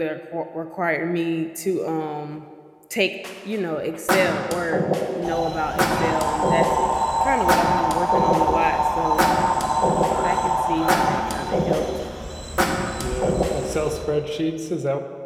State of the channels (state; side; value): identical; both; correlation 1.00